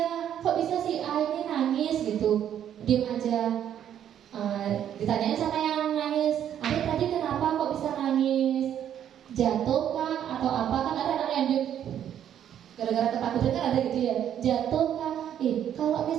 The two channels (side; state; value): left; quieter; 10.0 dB